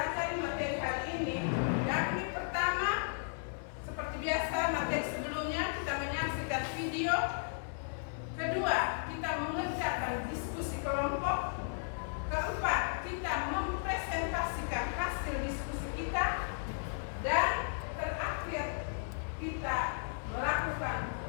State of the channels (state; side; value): silent; right; digital silence